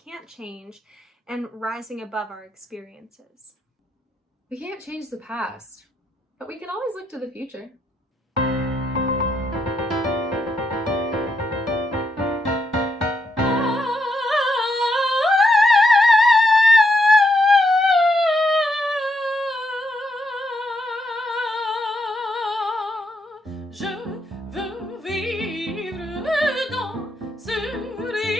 change and rising above our experiences. We can't change the past, but we can always look to the future. Je veux vivre dans ce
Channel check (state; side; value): normal; both; correlation 0.79